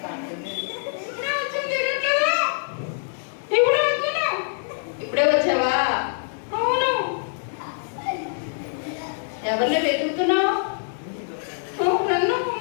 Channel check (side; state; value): right; silent; digital silence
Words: ఇప్పుడే వచ్చావా? అవును. ఎవరిని వెతుకుతున్నావు?